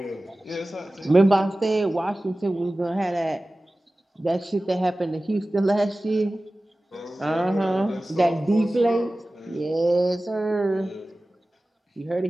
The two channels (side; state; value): both; normal; correlation 0.97